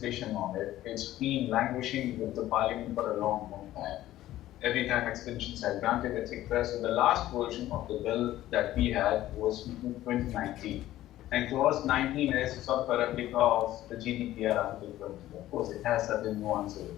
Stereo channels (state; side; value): quieter; right; 14.4 dB